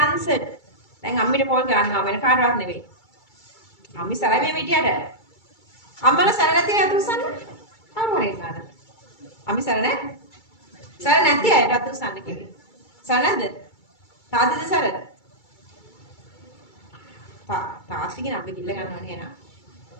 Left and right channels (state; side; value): late; right; 2.3 ms